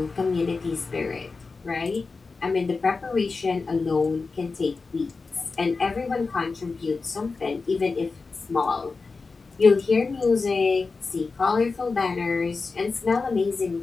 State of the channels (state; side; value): quieter; right; 4.2 dB